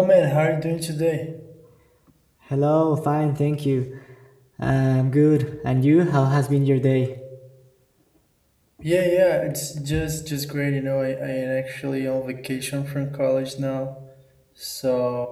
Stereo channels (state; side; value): identical; both; correlation 1.00